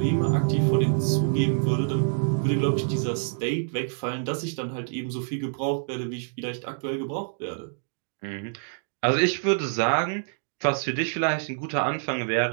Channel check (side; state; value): left; silent; digital silence